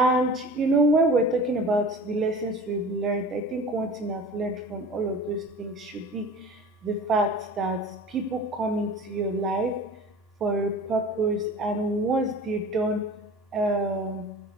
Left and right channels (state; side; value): normal; both; correlation 0.40